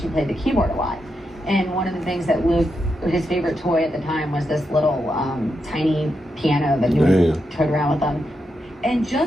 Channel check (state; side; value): normal; both; correlation 0.85